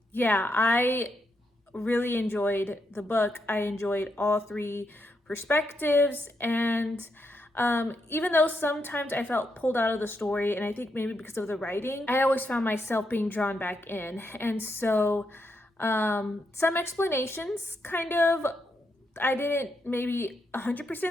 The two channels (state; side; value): normal; both; correlation 0.81